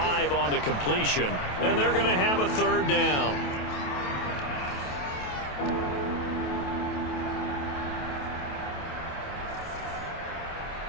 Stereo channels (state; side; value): late; right; 27 ms